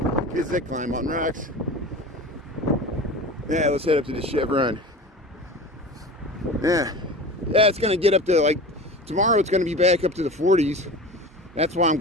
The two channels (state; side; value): normal; both; correlation 0.34